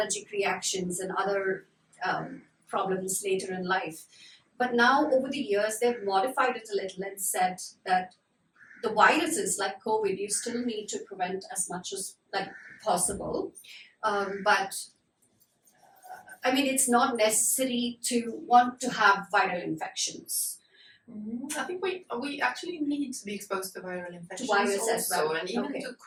reactions and other problems later in life. But now, over the years, they've modified it a little and said that the viruses like COVID, you still need to prevent as much as like possible. But I mean, it's not necessary to want to have viral infections. I think we actually need to be exposed to viral infections virus as well. and even to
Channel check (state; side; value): identical; both; correlation 1.00